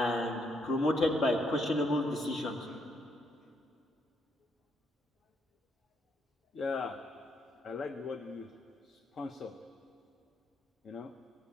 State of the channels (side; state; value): both; normal; correlation 0.74